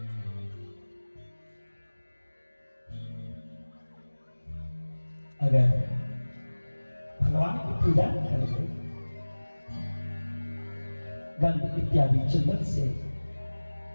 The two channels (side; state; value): both; inverted; correlation -1.00